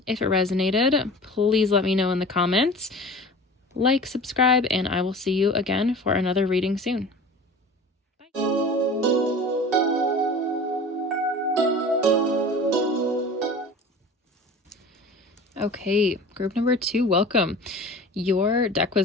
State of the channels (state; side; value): normal; both; correlation 0.39